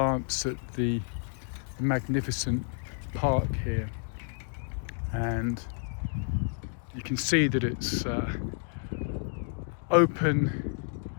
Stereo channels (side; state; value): right; silent; 58 dB below the other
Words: at the magnificent park here. And you can see that it's open